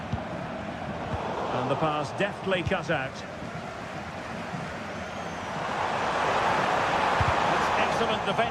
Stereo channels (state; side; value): identical; both; correlation 1.00